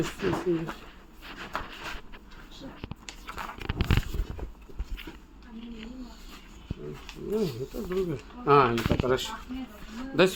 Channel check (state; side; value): identical; both; correlation 1.00